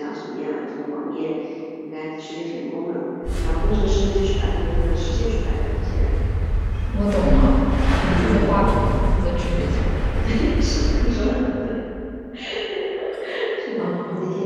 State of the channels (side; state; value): both; identical; correlation 1.00